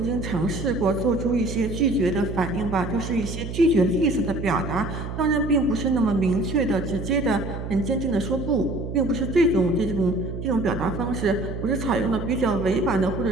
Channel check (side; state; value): right; noise; hum, 7 dB below the sound